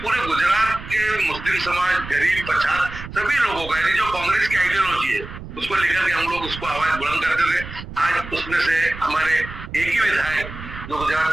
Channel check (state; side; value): noise; right; rumble, 12 dB below the sound